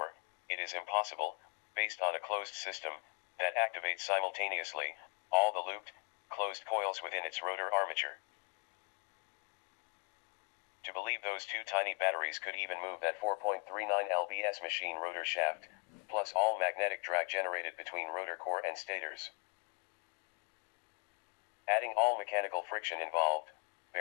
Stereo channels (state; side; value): quieter; right; 37.5 dB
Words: it is impossible, based on a closed system, that activates simultaneously, all the looped, closed coils within its rotor armature. To believe those two tiny batteries could even move that 4.39 lbs machine rotor shaft, plus all magnetic drag generated between rotor core and stators. Adding all mechanical friction involved,